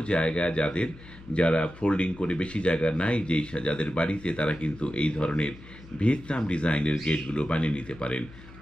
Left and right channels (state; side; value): noise; left; hum, 19 dB below the sound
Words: জায়গায়। যারা ফোল্ডিং করে বেশি জায়গা নাই যাদের বাড়িতে, তারা কিন্তু এই ধরনের ভিয়েতনাম ডিজাইনের গেটগুলো বানিয়ে নিতে পারেন।